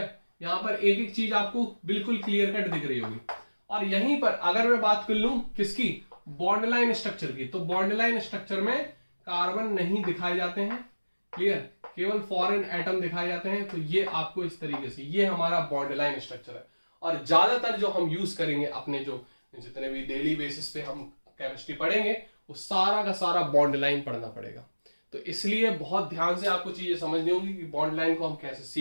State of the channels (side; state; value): both; inverted; correlation -1.00